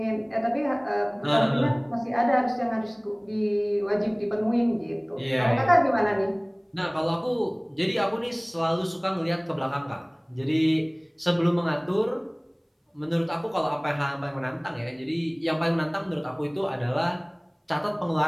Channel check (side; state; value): both; identical; correlation 1.00